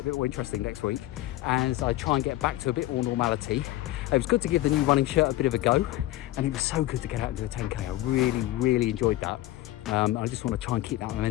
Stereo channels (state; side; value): quieter; right; 16.1 dB